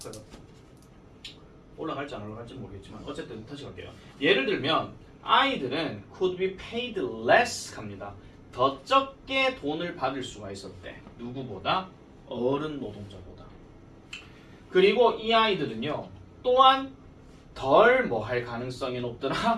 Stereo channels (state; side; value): identical; both; correlation 1.00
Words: 올라갈지 안 올라갈지 모르겠지만 어쨌든 다시 갈게요. 예를 들면 아이들은 could be paid less 합니다. 더 적게 돈을 받을 수가 있었대. 누구보다? 어른 노동자보다. 그리고 이 아이들은요 또한 덜 뭐 할 가능성이